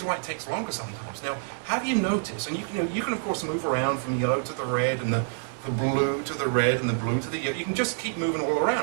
why it takes longer sometimes. Now, have you noticed, and you can of course move around from yellow to the red, and the blue to the red, and the blue to the yellow. You can just keep moving all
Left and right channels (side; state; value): left; silent; 60 dB below the other